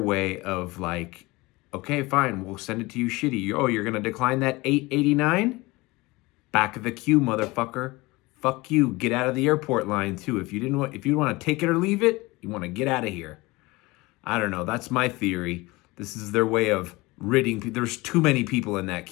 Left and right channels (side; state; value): right; quieter; 22.3 dB